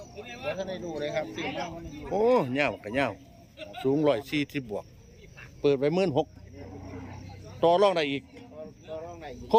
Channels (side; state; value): both; identical; correlation 1.00